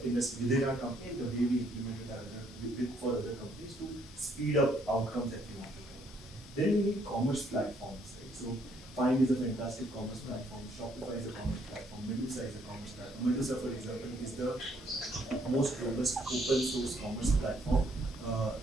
within our company, and the way we implement it for other companies to speed up outcomes that we want to get. Then we need commerce platforms, right? So Find is a fantastic commerce platform. Shopify is a commerce platform. Medusa is a commerce platform. Medusa, for example, is the most robust open source commerce platform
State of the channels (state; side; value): normal; both; correlation 0.68